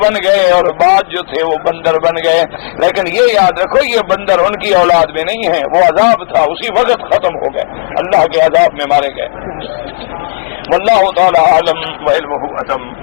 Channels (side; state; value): right; silent; 66 dB below the other